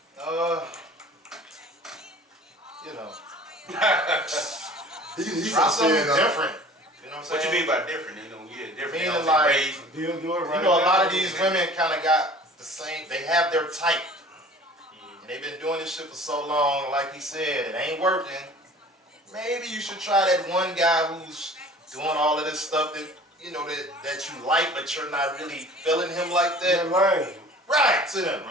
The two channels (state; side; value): normal; both; correlation 0.45